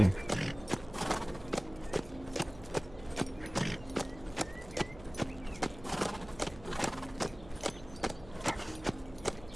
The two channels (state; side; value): noise; right; hum, 18 dB below the sound